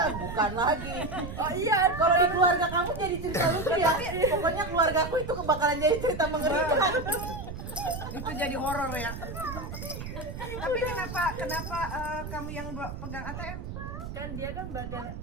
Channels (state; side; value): noise; right; rumble, 8 dB below the sound